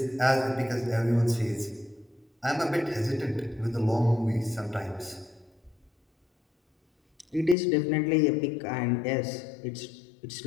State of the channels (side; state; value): right; drops out; at 7.6 s